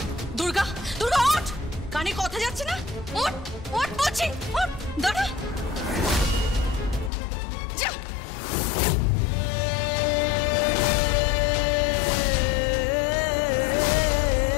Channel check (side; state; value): right; drops out; at 7.1 s